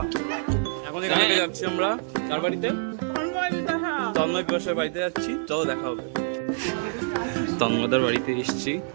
এখন এখান থেকে যাচ্ছি আমরা কার বাড়িতে? তন্ময় পিপাসার বাড়িতে যাচ্ছি। চলো দেখা হবে। তন্ময়দার বাড়িতে এসছি,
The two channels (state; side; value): silent; left; digital silence